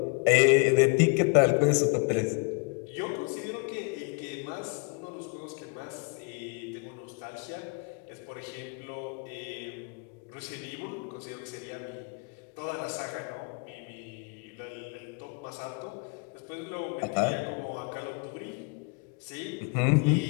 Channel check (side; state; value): right; quieter; 32.9 dB